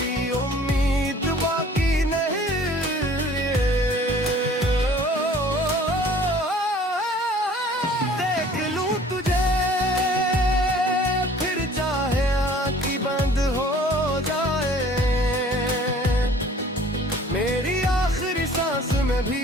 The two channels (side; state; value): both; normal; correlation 0.52